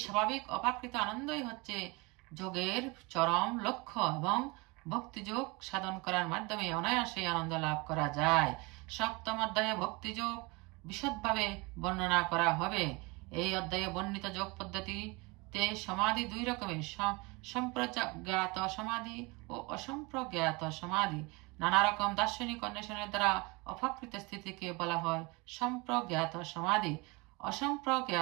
স্বাভাবিক অপাকৃত আনন্দই হচ্ছে যোগের চরম লক্ষ্য এবং ভক্তিযোগ সাধন করার মাধ্যমে অনায়াসে আনন্দ লাভ করা যায়। সপ্তম অধ্যায়ে ভক্তিযোগ বিশদভাবে বর্ণনা করা হবে। এই অধ্যায়ে বর্ণিত যোগ পদ্ধতিতে সমাধি দুই রকমের, সম্প্রজ্ঞাত সমাধি ও অসম্প্রজ্ঞাত সমাধি। নানা রকম দার্শনিক অন্বেষণের দ্বারা অপাকৃত স্থিতিকে বলা হয় সম্প্রজ্ঞাত সমাধি।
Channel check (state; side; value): quieter; left; 26.5 dB